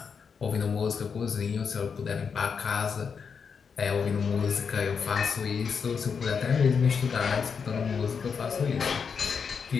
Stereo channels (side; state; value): right; quieter; 6.1 dB